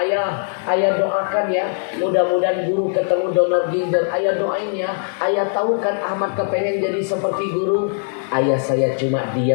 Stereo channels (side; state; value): right; silent; digital silence